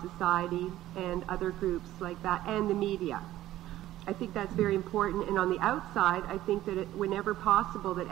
Society and other groups like that, and the media. I think that's very important. And on the outside, I think that whenever possible, that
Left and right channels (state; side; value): quieter; left; 14.4 dB